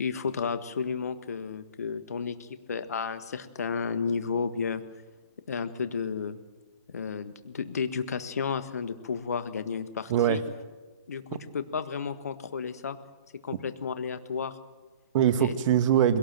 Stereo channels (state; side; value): inverted; both; correlation -0.45